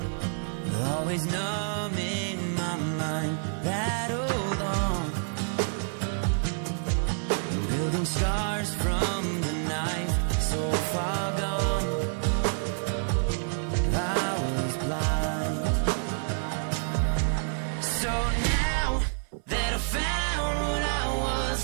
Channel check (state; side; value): silent; left; 59 dB below the other